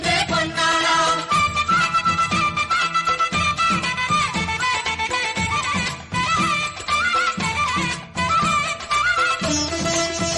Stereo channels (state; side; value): identical; both; correlation 1.00